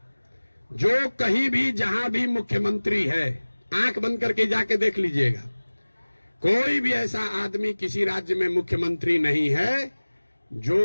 जो कहीं भी जहां भी मुख्यमंत्री है, आंख बंद करके जाके देख लीजिएगा, कोई भी ऐसा आदमी किसी राज्य में मुख्यमंत्री नहीं है जो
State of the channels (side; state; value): both; inverted; correlation -1.00